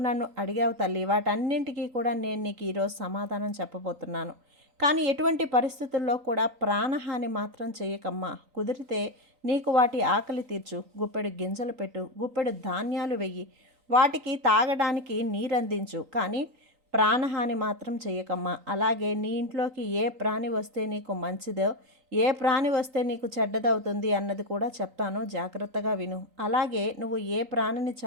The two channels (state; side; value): late; left; 3.9 ms